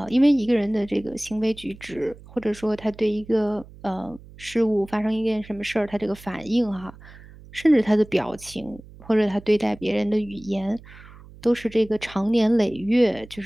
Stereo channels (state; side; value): noise; right; hum, 20 dB below the sound